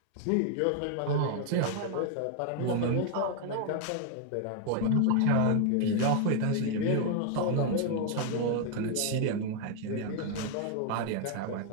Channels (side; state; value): both; different; correlation 0.01